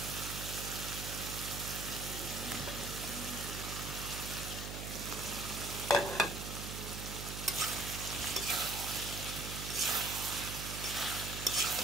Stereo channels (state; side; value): noise; right; hum, 6 dB below the sound